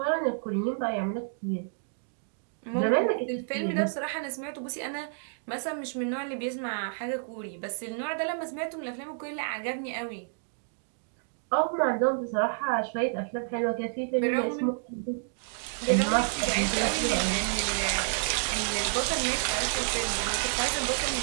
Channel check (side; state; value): left; silent; digital silence